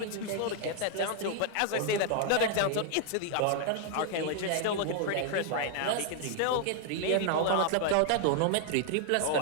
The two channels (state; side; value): different; both; correlation 0.00